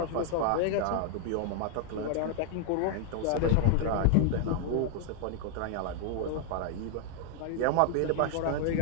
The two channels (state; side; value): different; both; correlation 0.00